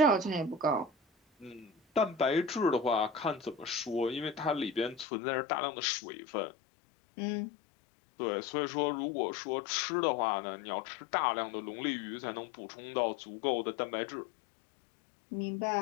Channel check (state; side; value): drops out; right; at 5.1 s